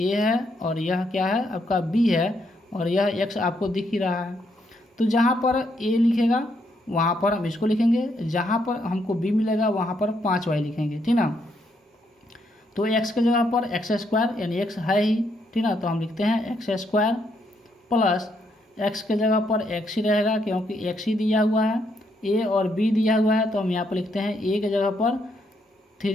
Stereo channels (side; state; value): both; normal; correlation 0.75